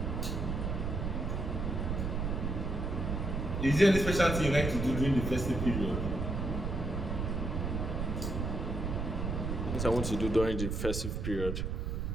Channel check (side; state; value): right; noise; rumble, 2 dB below the sound